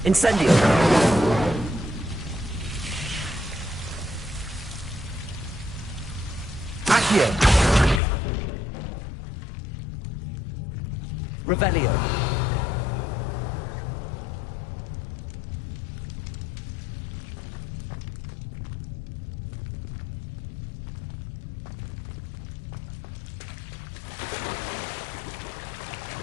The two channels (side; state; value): right; drops out; at 8.0 s